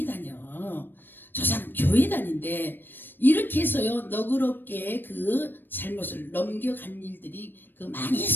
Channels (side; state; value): right; late; 0.094 ms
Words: 다녀. 저 사람 교회 다닌데 이렇게 해서요, 너그럽게 그 잘못을 넘겨간 일들이 많이